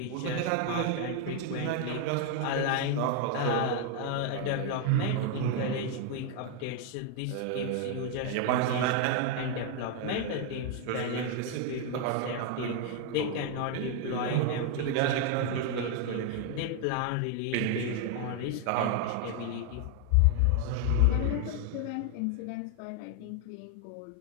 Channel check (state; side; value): different; both; correlation 0.00